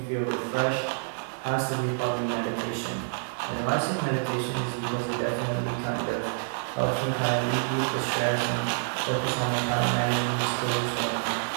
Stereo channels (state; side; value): silent; left; digital silence